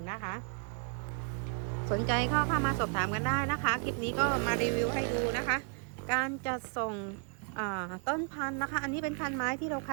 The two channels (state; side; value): quieter; left; 38.6 dB